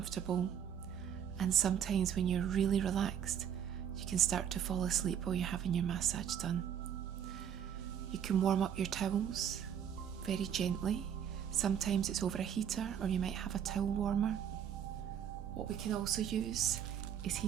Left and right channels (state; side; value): quieter; left; 8.9 dB